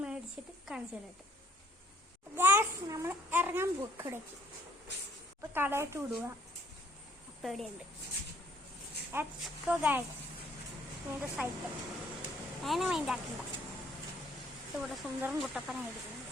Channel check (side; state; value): both; normal; correlation 0.63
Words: മേടിച്ചിട്ട് കാണിച്ചു തരട്ടെ. ഗൈസ്, നമ്മൾ ഇറങ്ങാൻ പോക്കിടയ്ക്ക് ഇപ്പം കടയിട്ട് വിടുക. അപ്പം എവിടെയുണ്ട് എക്സ്കോ ഗൈസ്, ഇതിൻ്റെ സൈക്കിൾ അതിനെ മൈൻഡാക്കണ്ട. ഇവിടെ സുന്ദരം കുട്ടപ്പനായിരിക്കുന്നുണ്ട്.